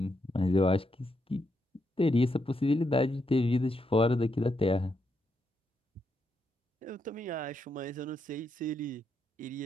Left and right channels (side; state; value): both; normal; correlation 0.81